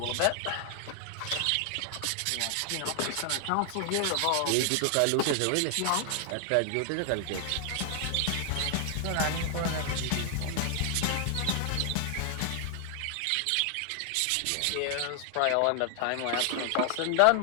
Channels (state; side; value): different; both; correlation 0.00